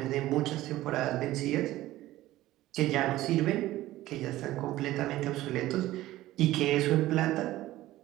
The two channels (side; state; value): left; quieter; 15.9 dB